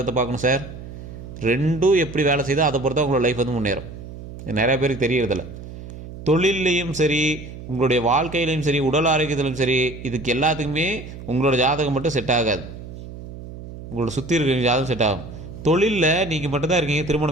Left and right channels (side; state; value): right; noise; hum, 13 dB below the sound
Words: பார்க்கணும் சார். ரெண்டும் எப்படி வேலை செய்தோ அதை பொறுத்தா உங்களோட லைஃப் வந்து முன்னேறும். நிறைய பேருக்கு தெரியறதில்ல. தொழிலையும் சரி, உங்களுடைய வாழ்க்கையிலையும் சரி, உடல் ஆரோக்கியத்திலும் சரி, இதுக்கு எல்லாத்துக்குமே உங்களோட ஜாதகம் மட்டும் செட் ஆகாது, உங்களோட சுற்றி இருக்கிற ஜாதகம் செட் ஆகும். தொழிலில் நீங்கள் மட்டும்தான் இருக்கீங்க,